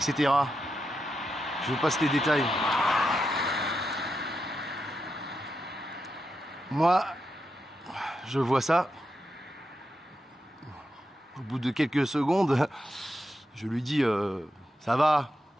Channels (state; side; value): normal; both; correlation 0.86